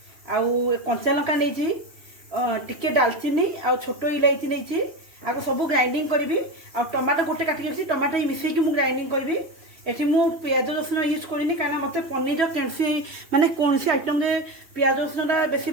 आउ कंचा लंका नहीं टिके डालचीनी आउ छोट इलायची नहीं आपको सब ग्राइंडिंग करी आ टमाटो गोटे काटिक टमाटो मिसेक ग्राइंडिंग करी ये मु प्याज रसुण यूज करनी कहीं मत पनीर कैसी माने कौन सी आइटम प्याज रसुण बेसी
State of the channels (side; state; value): left; late; 2.9 ms